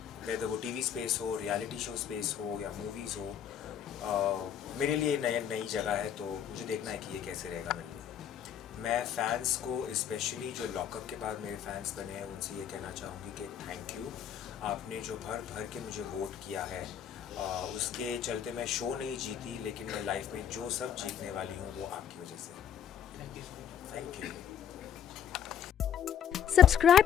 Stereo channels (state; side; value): quieter; right; 9.0 dB